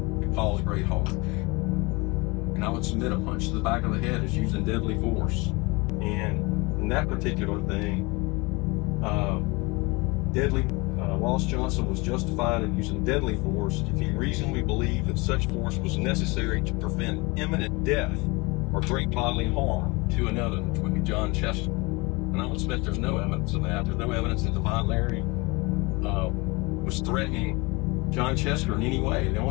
could cause great harm. And I would submit a punch to the back of the head is using deadly force. And in that particular thing, Ross Johnson was justified in using deadly force if he reasonably believed that such force was necessary to prevent imminent death or great bodily harm to another, which would be John Chester. And I would submit there's no evidence of that. There's no evidence that Devon Larry was threatening John Chester in any way. The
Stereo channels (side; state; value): right; quieter; 25.8 dB